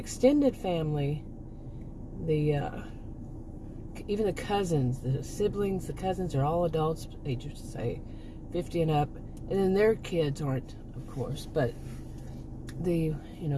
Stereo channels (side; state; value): both; identical; correlation 1.00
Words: family, even the cousins, the siblings, the cousins are all adults, ages say 50 and up, and then their kids aren't, of course, but the